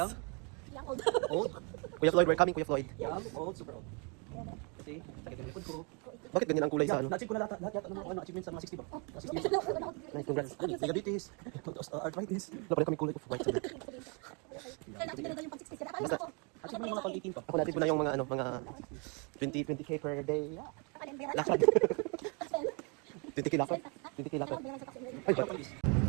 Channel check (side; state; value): left; quieter; 34.2 dB